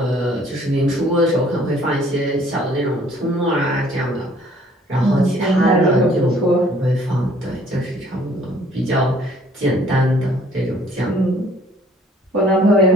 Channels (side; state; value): both; normal; correlation 0.59